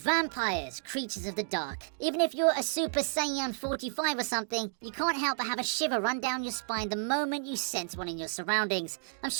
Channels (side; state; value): left; silent; digital silence